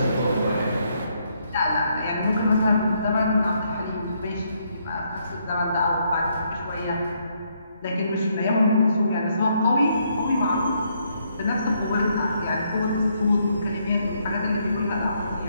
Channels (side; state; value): both; inverted; correlation -0.73